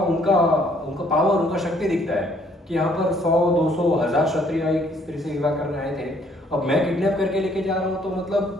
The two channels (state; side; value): normal; both; correlation 0.64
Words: पावर, उनका शक्ति दिखता है कि यहाँ पर 100, 200, 1000 क्षत्रिय एक स्त्री से विवाह करने आए थे। अब मैं किडनैप करके लेके जा रहा हूँ, तो